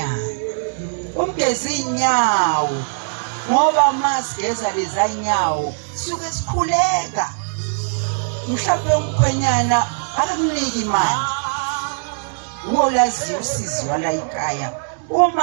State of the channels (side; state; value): left; silent; digital silence